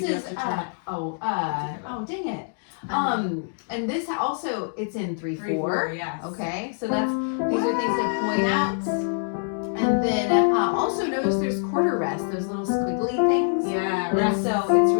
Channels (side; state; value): right; silent; digital silence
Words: you do is have to turn it. oh dang it. And this also it's in 3/4. Yes. Okay, so these are things to point out. And then also notice there's quarter rest, those little squiggly things. Yeah. And Rest. so it's